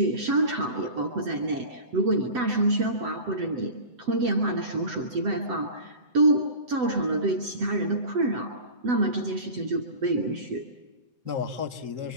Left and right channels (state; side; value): late; left; 7.9 ms